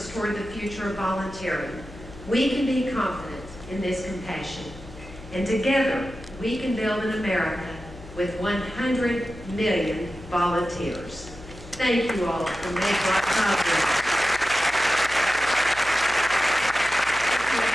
toward the future of volunteering, we can be confident in this compassion. And together, we can build an America with 100 million volunteers. Thank you all for making our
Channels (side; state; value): left; noise; hum, 17 dB below the sound